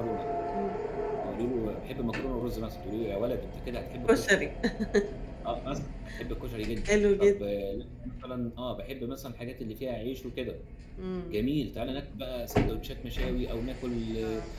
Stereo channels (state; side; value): identical; both; correlation 1.00